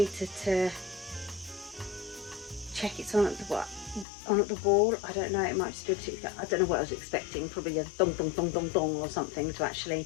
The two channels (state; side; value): drops out; right; at 4.0 s